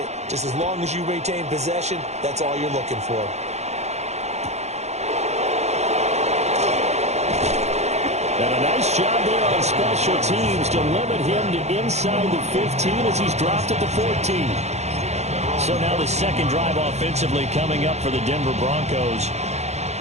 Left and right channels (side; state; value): left; late; 0.32 ms